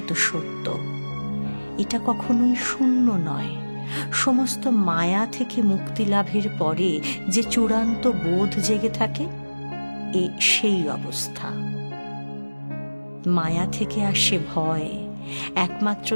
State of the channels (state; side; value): inverted; both; correlation -1.00